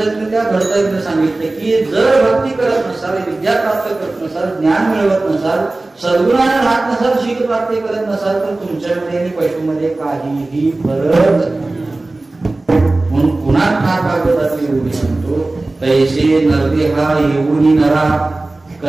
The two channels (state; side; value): quieter; left; 3.0 dB